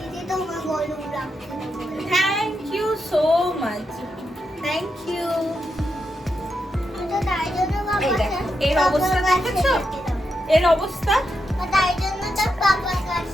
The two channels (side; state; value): both; normal; correlation 0.85